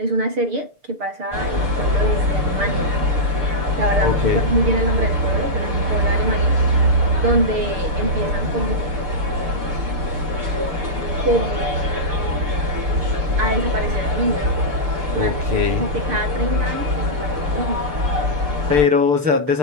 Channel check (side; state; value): left; late; 6.7 ms